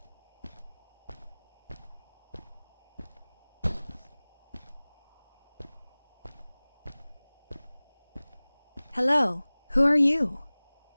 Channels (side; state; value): both; inverted; correlation -1.00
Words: Hello, who are you?